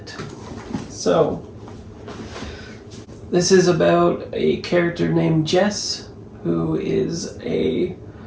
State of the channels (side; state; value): both; identical; correlation 1.00